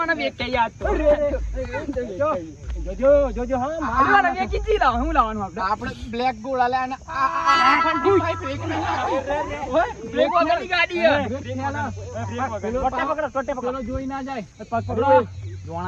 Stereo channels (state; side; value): identical; both; correlation 1.00